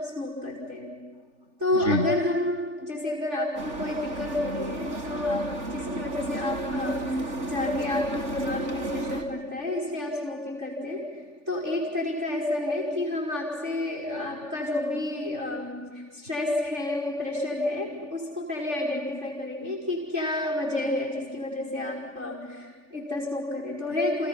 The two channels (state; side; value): late; left; 3.4 ms